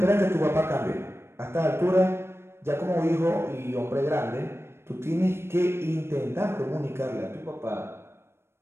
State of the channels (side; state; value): left; late; 0.12 ms